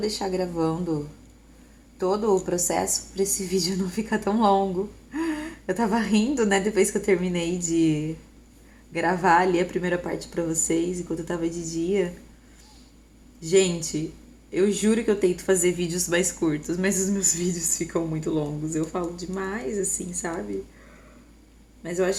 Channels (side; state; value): both; identical; correlation 1.00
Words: gravando todo o processo para esse vídeo não ficar tão longo. Eu tava rindo, né, depois que eu terminei de gravar ali a primeira parte para vocês, enquanto eu tava de dia. Gente, eu juro que eu tento fazer vídeos mais curtos, mas os meus vídeos ficam muito longos. Eu falo demais, assim, sabe? Mas eu